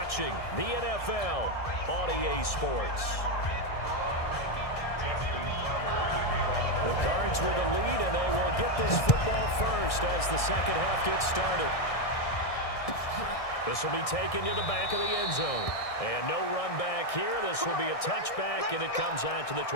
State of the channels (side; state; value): right; late; 1.6 ms